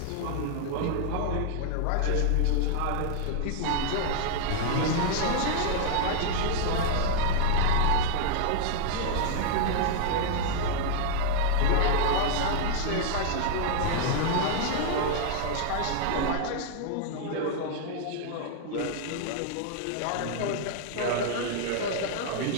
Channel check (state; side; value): different; both; correlation 0.00